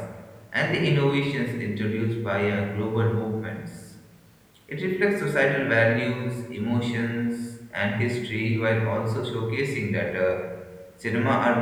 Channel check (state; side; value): identical; both; correlation 1.00